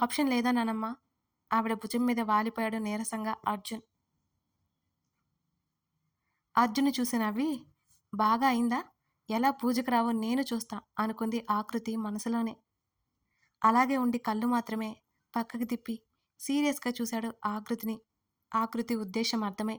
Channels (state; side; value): identical; both; correlation 1.00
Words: ఆప్షన్ లేదా నానమ్మా? ఆవిడ భుజం మీద వాలిపోయాడు నీరసంగా అర్జున్. అర్జున్ చూసి నవ్వి, బాగా అయిందా? ఎలా పూజకు రావో నేను చూస్తా అనుకుంది ఆకృతి మనసులోనే. అలాగే ఉండి కళ్ళు మాత్రమే పక్కకి తిప్పి సీరియస్గా చూశాడు ఆకృతిని. ఆకృతి ఉద్దేశం అర్థమై